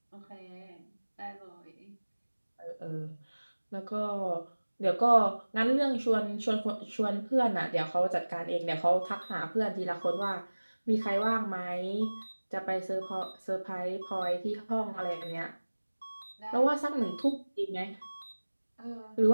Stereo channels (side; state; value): both; inverted; correlation -1.00